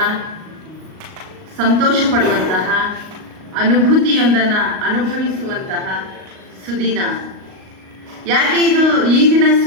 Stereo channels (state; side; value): late; left; 38 ms